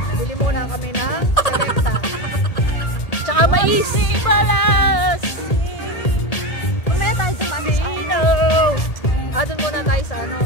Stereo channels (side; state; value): right; late; 1.8 ms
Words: Bili muna kami ng Selecta. Tsaka mais. Mamaya tayo sa Sino? Doon muna tayo sa ano.